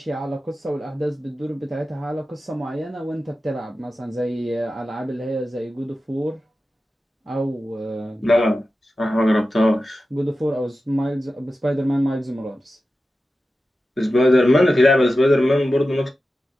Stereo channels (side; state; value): both; normal; correlation 0.93